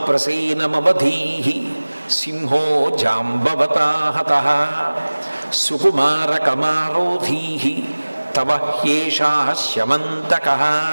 ప్రసేనమవధీహి సింహో జాంబవతాహతః సుకుమార కమారోధీహి తవ హ్యేషా శమంతకః.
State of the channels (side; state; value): both; inverted; correlation -1.00